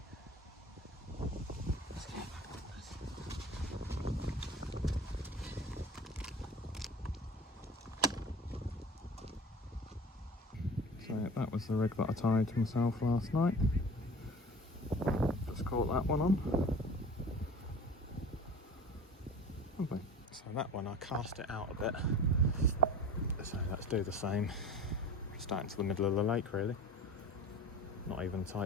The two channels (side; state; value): both; normal; correlation 0.40